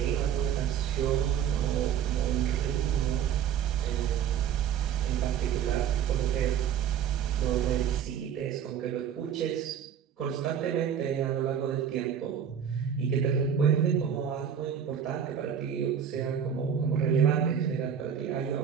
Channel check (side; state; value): left; quieter; 8.6 dB